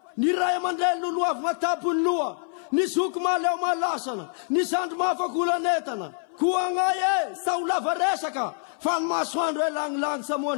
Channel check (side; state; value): right; silent; 58 dB below the other